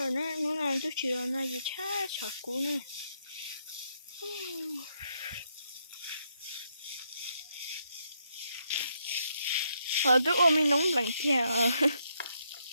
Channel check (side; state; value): both; inverted; correlation -0.77